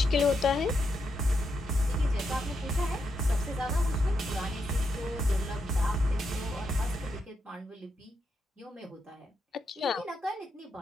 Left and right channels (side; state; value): both; normal; correlation 0.82